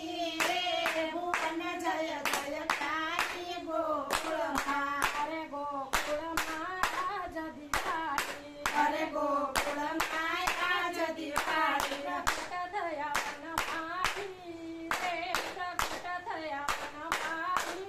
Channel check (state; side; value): identical; both; correlation 1.00